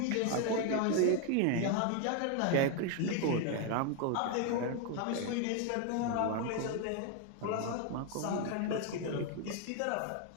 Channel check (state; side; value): different; both; correlation 0.01